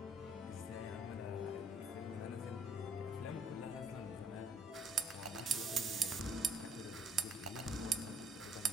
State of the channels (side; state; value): both; normal; correlation 0.64